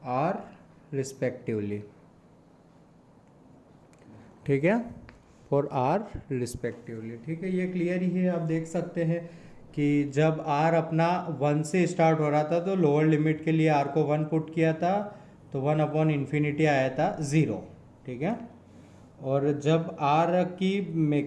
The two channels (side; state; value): both; identical; correlation 1.00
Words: r respectively। ठीक है, फॉर आर रिस्पेक्टिवली। ठीक है, ये क्लियर ही है। आप देख सकते हैं कि जब आर अपना 1 से स्टार्ट हो रहा था तो लोअर लिमिट के लिए आर को 1 पुट किया था तो 1 अपॉन इन्फिनिटी आया था 0। ठीक है, और जब आर की